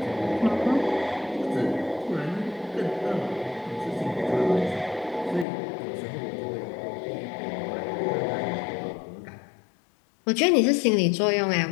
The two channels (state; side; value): drops out; right; at 5.5 s